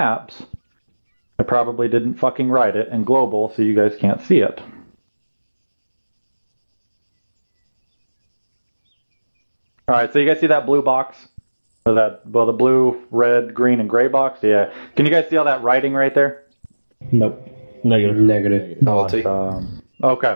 I probably didn't fucking write it in global, so you guys can't see it. Alright, so you guys see that blue box? Or the blue, red, green, and gray box? Yeah. Can you guys see all that writing right there? Nope. Negative.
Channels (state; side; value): inverted; both; correlation -1.00